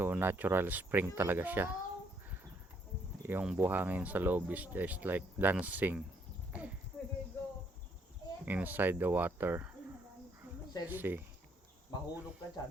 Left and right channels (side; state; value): both; normal; correlation 0.69